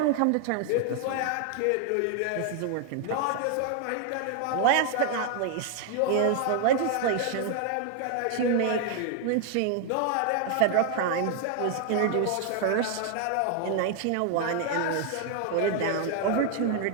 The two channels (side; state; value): both; different; correlation 0.00